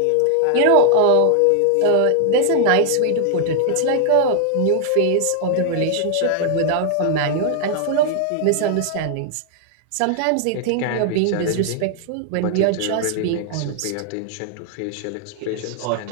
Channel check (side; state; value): both; different; correlation -0.01